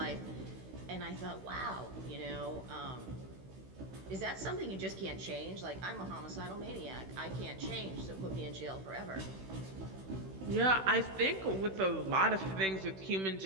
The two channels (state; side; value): late; left; 16 ms